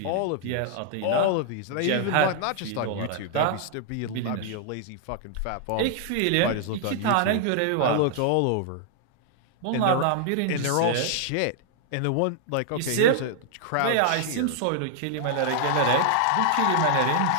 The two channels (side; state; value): both; different; correlation 0.00